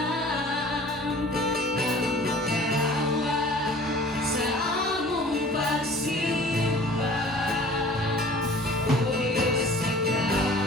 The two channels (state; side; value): normal; both; correlation 0.47